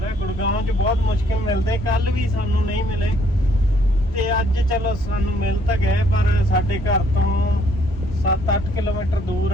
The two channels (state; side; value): normal; both; correlation 0.66